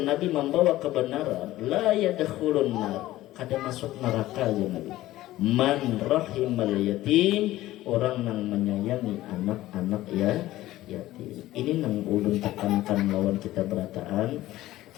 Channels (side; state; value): right; quieter; 15.8 dB